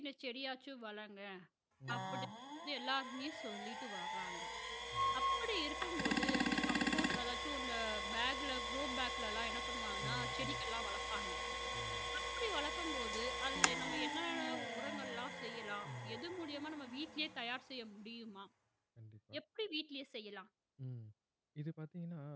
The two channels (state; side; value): identical; both; correlation 1.00